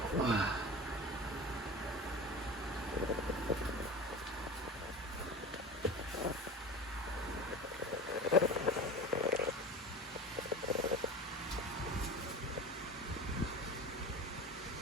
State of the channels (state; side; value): normal; both; correlation 0.33